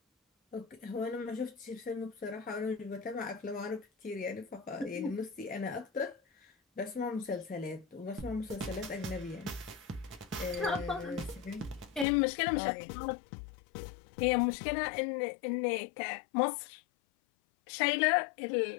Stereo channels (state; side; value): drops out; right; at 12.1 s